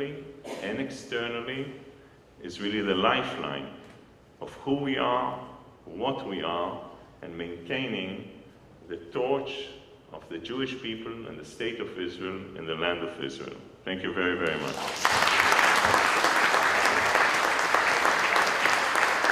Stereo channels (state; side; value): identical; both; correlation 1.00